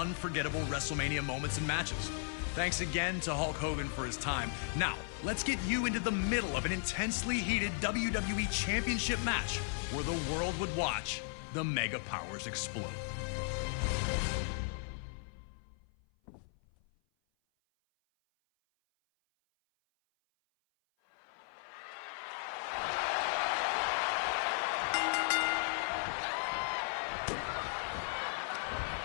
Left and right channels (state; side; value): silent; right; 54 dB below the other